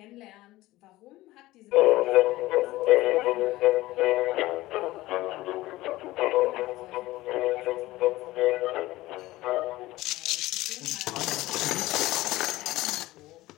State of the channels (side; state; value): right; quieter; 17.8 dB